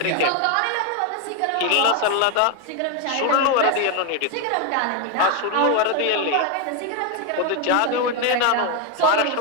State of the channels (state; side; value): different; both; correlation 0.01